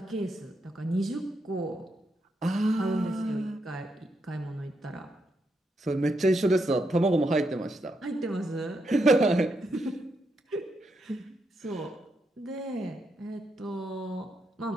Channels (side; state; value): both; normal; correlation 0.81